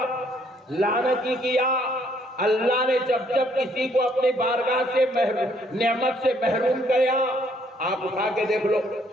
لعنتی کیا, اللہ نے جب جب کسی کو اپنی بارگاہ سے نعمت سے محروم کیا, آپ اٹھا کے دیکھ لو.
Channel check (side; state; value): both; normal; correlation 0.66